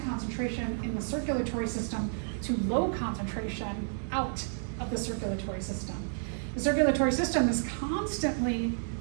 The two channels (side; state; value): left; silent; digital silence